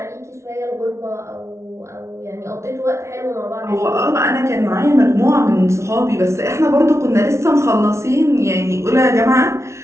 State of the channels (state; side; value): late; left; 0.13 ms